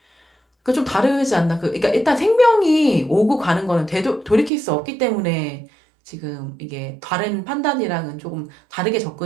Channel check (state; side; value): drops out; left; at 4.5 s